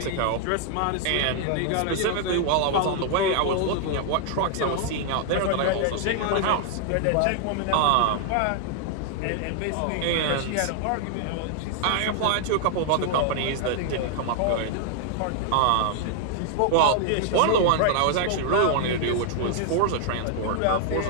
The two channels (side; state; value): both; different; correlation 0.00